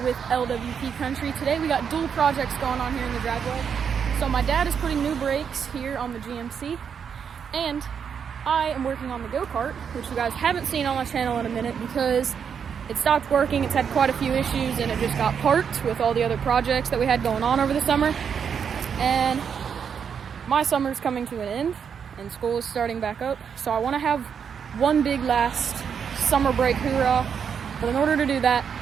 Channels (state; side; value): quieter; left; 7.2 dB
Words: LWP Country. Today we got dual projects going on here in the driveway. So my dad is putting new brakes here on the GMC, and I am working on the go-kart, which you guys haven't seen on my channel in a minute because it stopped working. It's had quite a few issues and it just got parked with all the other projects that we had going on over the summer. And my summer's coming to an end and school is starting back up. So I want to have one big last summer break hoorah. But in order to do that,